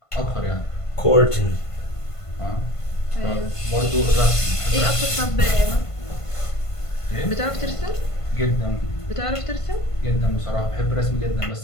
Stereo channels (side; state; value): right; late; 1.5 ms